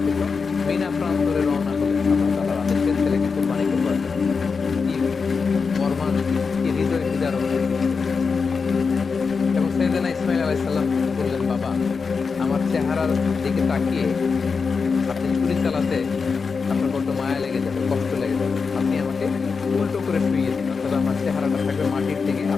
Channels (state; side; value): quieter; right; 5.1 dB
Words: মিনা প্রান্তরে রওনা হলেন আল্লাহ তাআলার আদেশে ছেলেকে কুরবানি করবার জন্য। কি মর্মান, কি হৃদয় বিদারক। এবং সাইয়েদনা ইসমাইল আলাইহিস সালাম বললেন, বাবা, আমার চেহারার দিকে তাকিয়ে আপনি ছুরি চালাতে আপনার বড্ড মায়া লেগে যাবে, কষ্ট লেগে যাবে, আপনি আমাকে উল্টো করে শুইয়ে দিন, অর্থাৎ আমার চেহারাটা থাকবে মাটির দিকে,